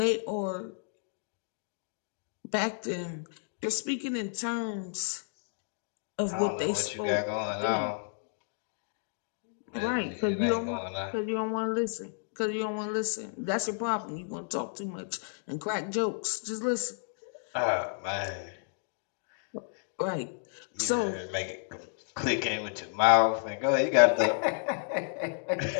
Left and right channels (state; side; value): silent; right; digital silence